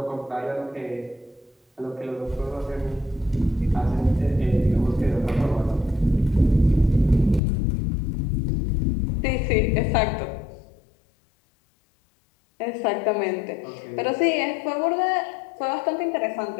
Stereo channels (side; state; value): right; drops out; at 7.4 s